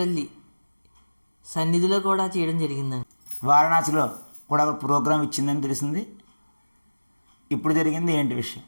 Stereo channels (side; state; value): both; inverted; correlation -1.00